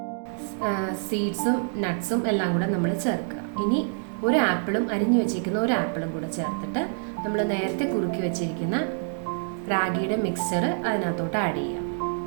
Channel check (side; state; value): left; silent; 57 dB below the other